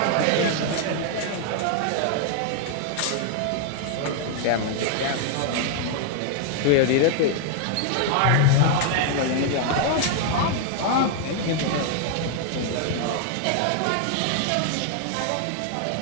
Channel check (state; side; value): different; both; correlation 0.00